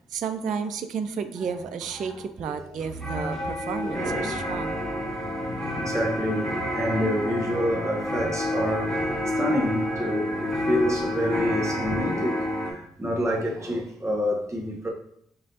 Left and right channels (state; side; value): normal; both; correlation 0.75